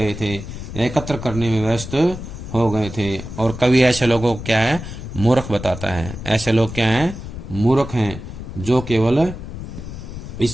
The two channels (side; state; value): left; noise; rumble, 10 dB below the sound